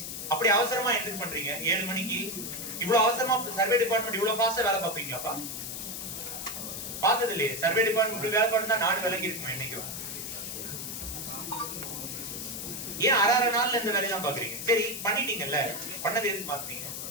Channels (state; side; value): noise; left; hiss, 6 dB below the sound